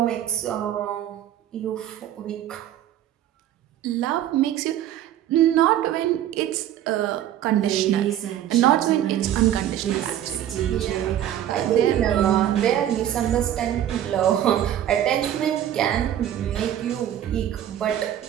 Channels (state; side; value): quieter; left; 11.4 dB